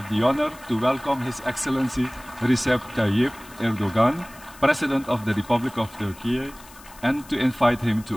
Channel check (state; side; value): noise; left; hiss, 21 dB below the sound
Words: the honor to welcome His Excellency Recep Tayyip ERDOİan, President of the Republic of Turkey, and to invite him